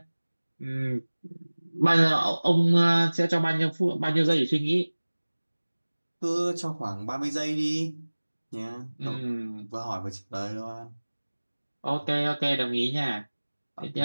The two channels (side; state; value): both; inverted; correlation -1.00